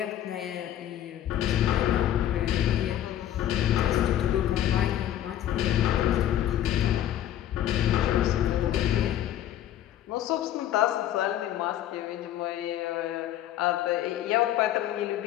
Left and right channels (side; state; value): right; quieter; 11.8 dB